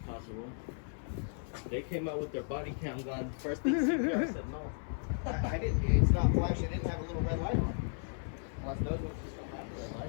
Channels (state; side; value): silent; right; 54 dB below the other